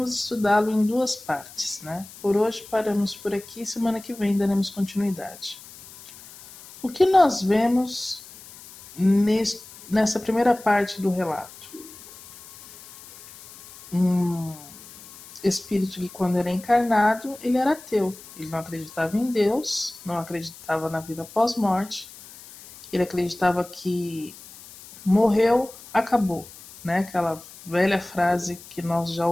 estudá-lo em duas partes, né? Por hoje paramos por aqui, semana que vem daremos continuidade. O que nós vemos nessa primeira parte do relato? Um espírito que, quando era encarnado, ele era ateu. Ele não acreditava em Deus, não acreditava na vida pós-morte. Ele acreditava que morreu, acabou, né? Aquela velha frase que nós já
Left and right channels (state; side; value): noise; left; hiss, 19 dB below the sound